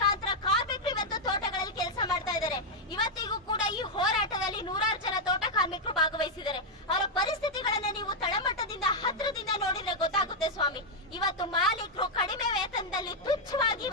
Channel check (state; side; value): normal; both; correlation -0.01